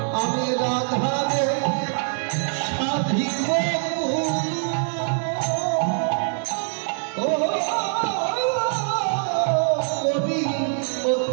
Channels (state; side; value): silent; left; 63 dB below the other